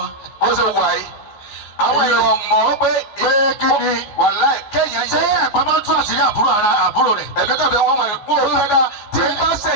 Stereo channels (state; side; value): late; right; 14 ms